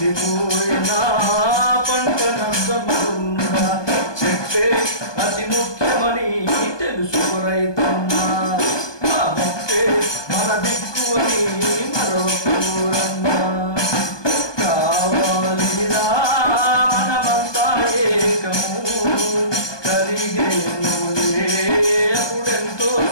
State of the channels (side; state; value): right; late; 1.2 ms